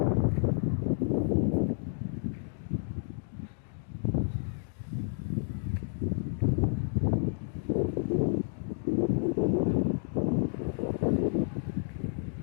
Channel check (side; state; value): right; silent; digital silence